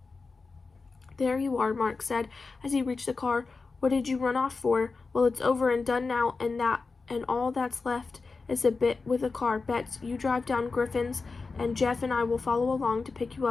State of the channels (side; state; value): right; quieter; 4.2 dB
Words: There you are, Mark said, as he reached the car. What did you run off for? Well, it's over and done now, and all that's left is a bit with the car. Bets, you drive down Griffin's, and Jeff and I will follow along to pick you